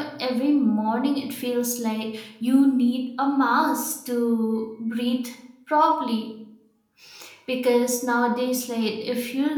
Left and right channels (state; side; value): identical; both; correlation 1.00